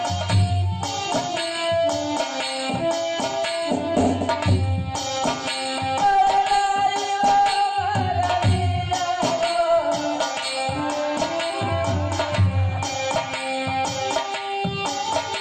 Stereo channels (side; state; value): both; identical; correlation 1.00